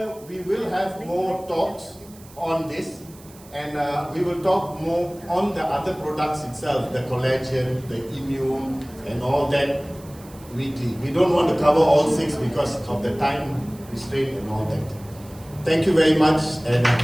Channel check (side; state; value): right; noise; hiss, 23 dB below the sound